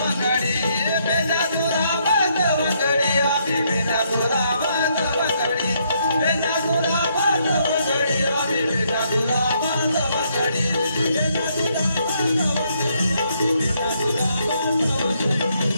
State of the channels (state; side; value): inverted; both; correlation -0.73